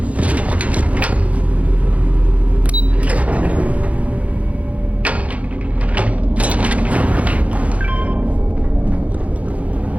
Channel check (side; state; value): left; late; 0.066 ms